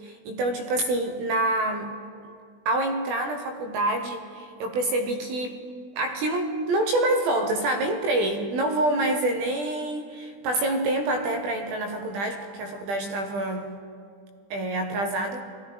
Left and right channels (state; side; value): late; left; 20 ms